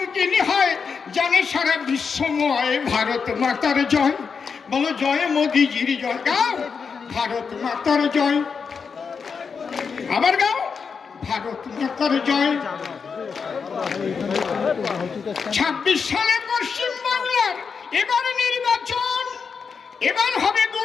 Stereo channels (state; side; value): quieter; right; 5.7 dB